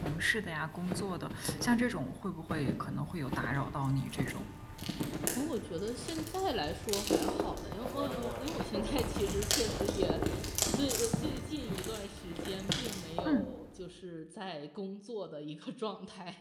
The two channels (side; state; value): both; identical; correlation 1.00